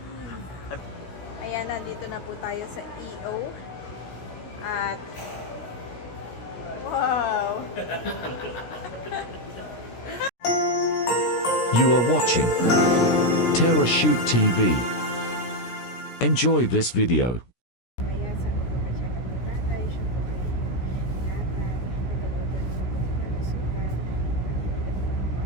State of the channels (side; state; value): right; late; 16 ms